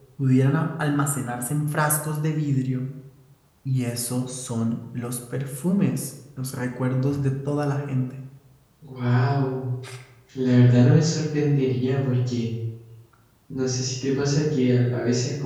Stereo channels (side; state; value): both; identical; correlation 1.00